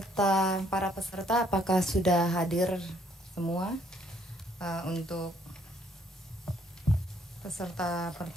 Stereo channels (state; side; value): normal; both; correlation 0.66